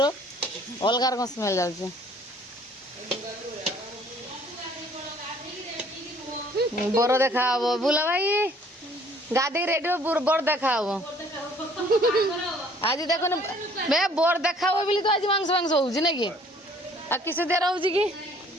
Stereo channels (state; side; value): normal; both; correlation 0.57